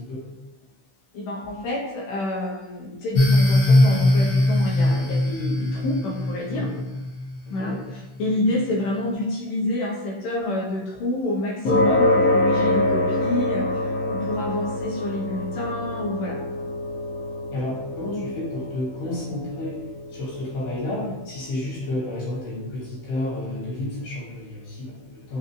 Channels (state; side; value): late; right; 16 ms